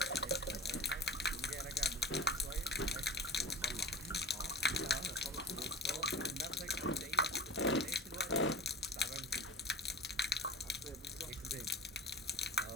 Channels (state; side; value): normal; both; correlation 0.32